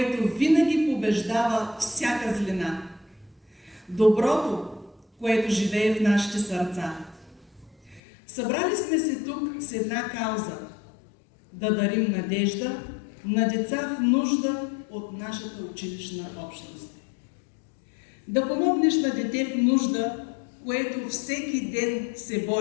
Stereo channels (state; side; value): drops out; right; at 8.0 s